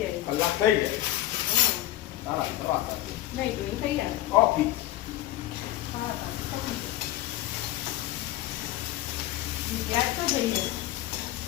જાય. કલાક થઈ જાય. ના ના દવા સાથે નહીં તો એ થઈ જાય. કોફી હા ગેસ તો થઈ જાય.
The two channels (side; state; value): right; quieter; 14.6 dB